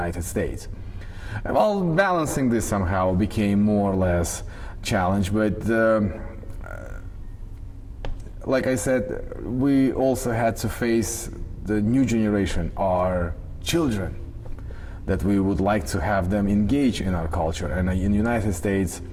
States. Well, balancing this somehow became more or less challenge, but like I said, we also had to face the new generation, our children, that we would like to have them engage in our culture. And in the United States,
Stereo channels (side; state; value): both; identical; correlation 1.00